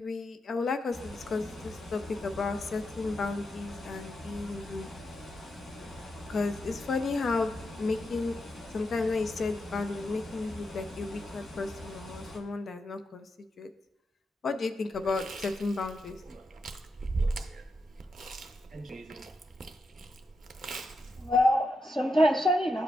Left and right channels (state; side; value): normal; both; correlation 0.85